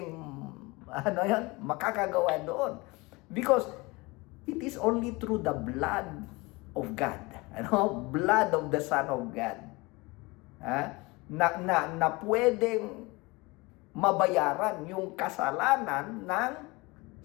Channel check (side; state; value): right; quieter; 24.3 dB